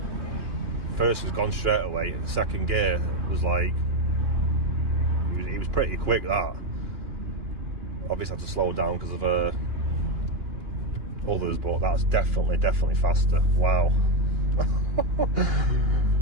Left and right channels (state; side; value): late; left; 2.9 ms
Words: first was gone straight away. Second gear was like it was pretty quick. That obviously I had to slow down because of others, but that's definitely faster. Wow.